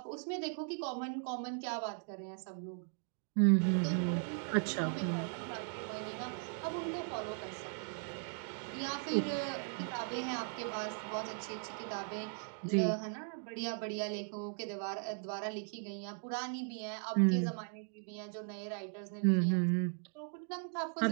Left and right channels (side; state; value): left; silent; 52 dB below the other